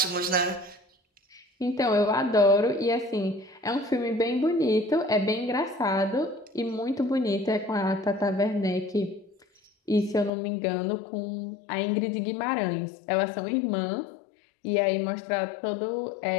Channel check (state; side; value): drops out; right; at 10.3 s